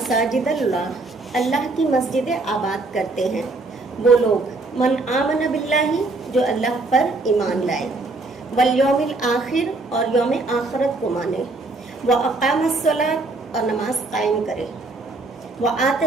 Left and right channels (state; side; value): quieter; left; 3.3 dB